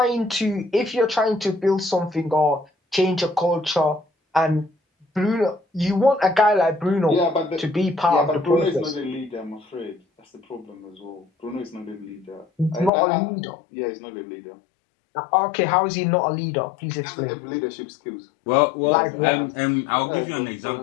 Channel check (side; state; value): right; drops out; at 12.9 s